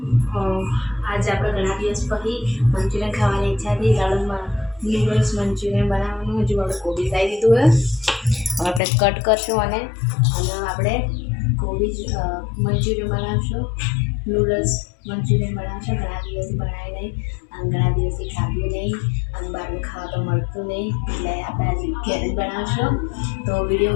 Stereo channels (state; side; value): drops out; right; at 8.8 s